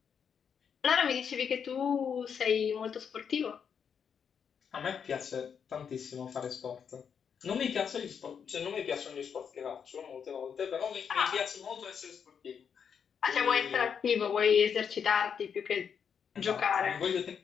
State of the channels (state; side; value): quieter; right; 7.2 dB